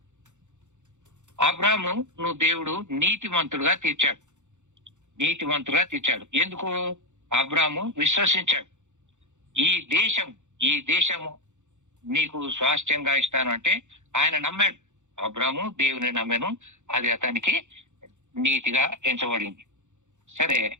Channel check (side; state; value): left; late; 0.84 ms